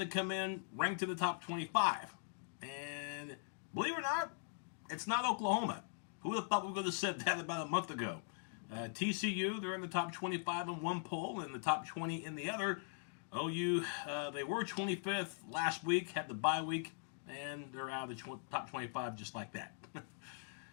come in ranked in the top 25. And believe it or not, it's not Oklahoma. Who would have thought we would have said that about a month ago? T.C.U, they're in the top 25 in one poll and the top 20 in the other. OU, they were 25th last week, had the bye week, and they're out of the top 25 just like that.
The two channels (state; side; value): silent; right; digital silence